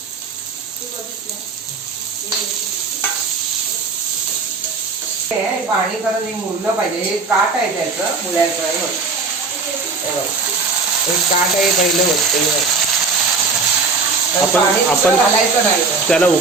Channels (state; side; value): quieter; left; 4.3 dB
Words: पाणी करत हे मुरलं पाहिजे. हे काट आहे त्याचं मुळ्याचं. हे बघ एक काट आहे पहिलं होत. आपण घालायचं नाही त्याला